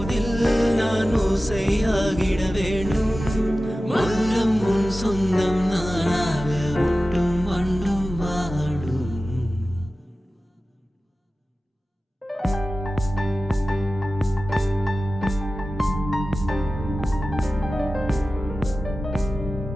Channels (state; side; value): normal; both; correlation 0.95